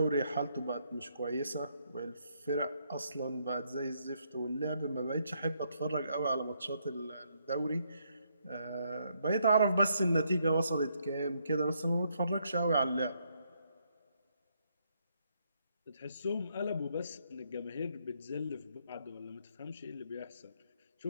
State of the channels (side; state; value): both; inverted; correlation -0.74